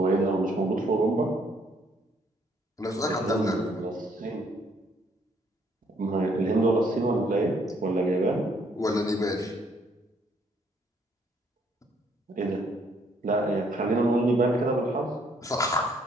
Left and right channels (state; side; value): normal; both; correlation 0.67